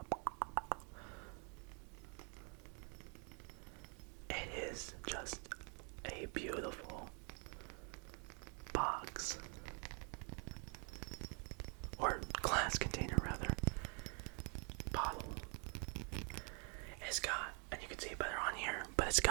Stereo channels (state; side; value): quieter; left; 37.5 dB